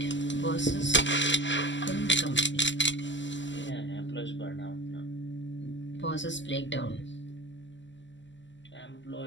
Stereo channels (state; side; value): late; right; 0.54 ms